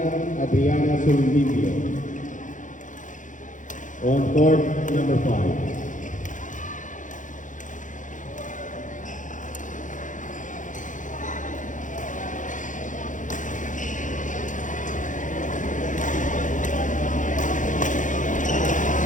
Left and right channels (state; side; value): late; right; 0.37 ms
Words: Adriana Sulvivio. On court number 5.